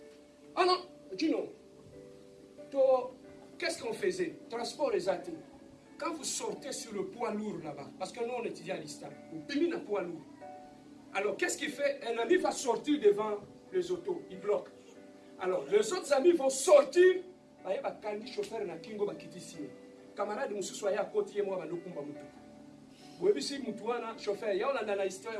Ah non, dis non. Qu'est-ce qu'on faisait? Transport les athées. Quand vous sortez sur le poids lourd là-bas, parce que nous on étudie à l'Istam, on pimine un poids lourd. Alors qu'est-ce qu'il fait? Un ami va sortir devant les autos, il bloque. Alors les autres amis vont sortir. Baye ba kandi chauffeur na kingo ba kitisi. Camarade mususu ya côté moi ba lokumba mutu. Boyebi si mutu wana chauffeur ya on a dans la histoire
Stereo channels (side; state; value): both; identical; correlation 1.00